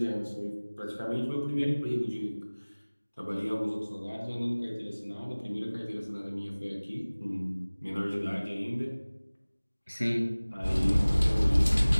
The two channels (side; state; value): both; inverted; correlation -1.00